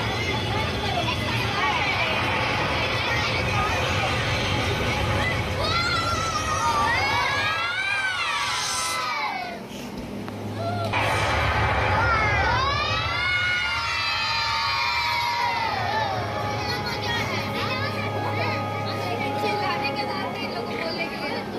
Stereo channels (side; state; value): both; identical; correlation 1.00